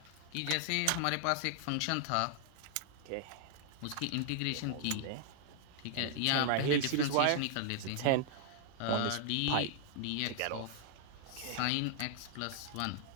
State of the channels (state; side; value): different; both; correlation 0.00